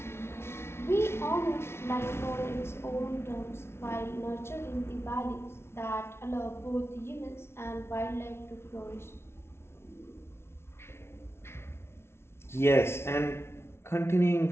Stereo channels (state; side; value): late; right; 0.12 ms